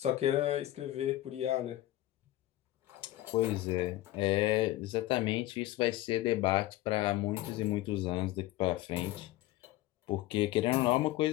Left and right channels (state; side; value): quieter; right; 16.0 dB